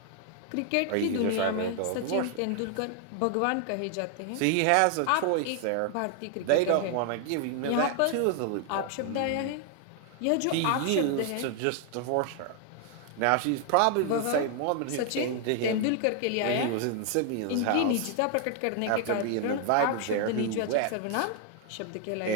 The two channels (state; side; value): different; both; correlation 0.00